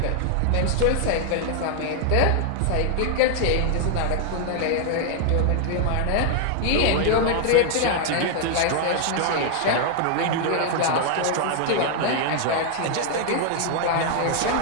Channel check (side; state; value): both; different; correlation 0.00